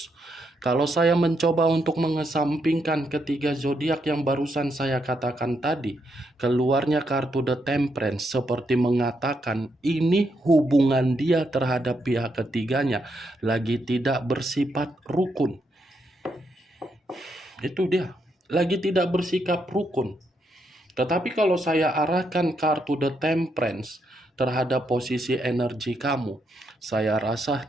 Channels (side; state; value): both; normal; correlation 0.79